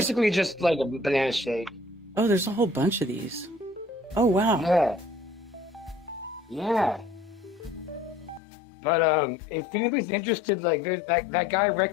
basically just like a banana shake. Oh, there's a whole bunch of these. Oh, wow. Yeah. But if anybody's interested, like there's that guy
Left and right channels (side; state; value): right; drops out; at 8.4 s